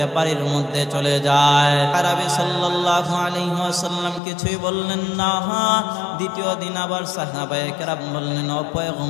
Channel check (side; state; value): right; drops out; at 4.2 s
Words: বাড়ির মধ্যে চলে যায়। আরবি সাল্লাল্লাহু আলাইহি ওয়াসাল্লাম কিছুই বললেন না। দ্বিতীয় দিন আবার সাহাবায়ে কেরাম বললেন, ও